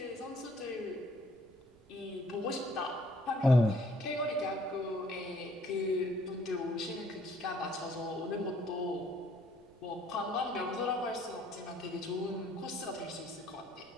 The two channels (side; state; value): right; noise; rumble, 30 dB below the sound